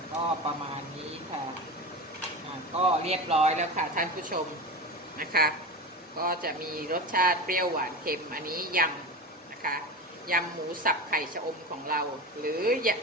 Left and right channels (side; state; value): both; normal; correlation 0.26